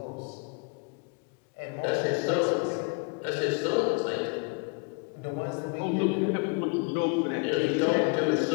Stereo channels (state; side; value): quieter; right; 32.8 dB